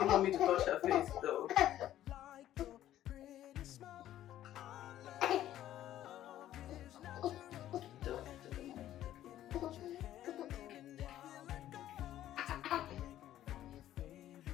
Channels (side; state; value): right; quieter; 12.7 dB